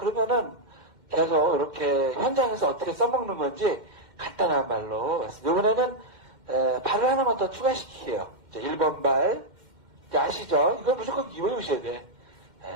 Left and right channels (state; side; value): late; left; 2.1 ms